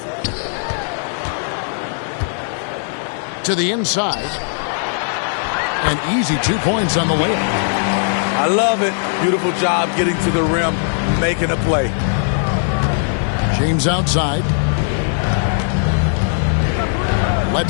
To the inside. An easy 2 points on the layup. I love it. Beautiful job getting to the rim, making a play. James outside.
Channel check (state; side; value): silent; right; 67 dB below the other